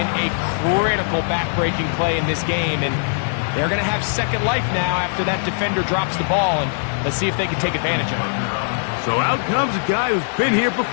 a critical back-breaking play in this game. And they're going to have second life now after that defender drops the ball. And let's see if they can take advantage of it. So out comes a guy who's been here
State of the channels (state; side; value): silent; right; digital silence